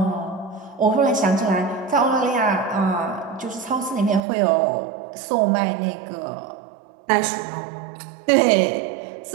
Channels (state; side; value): drops out; left; at 4.2 s